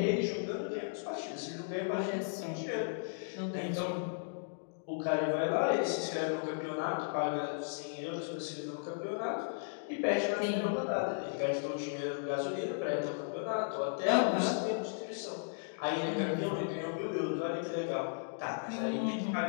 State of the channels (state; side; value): silent; right; digital silence